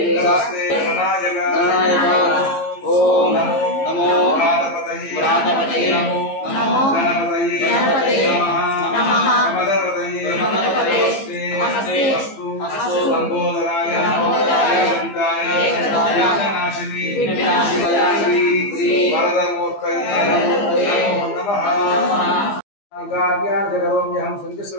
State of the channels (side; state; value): right; late; 15 ms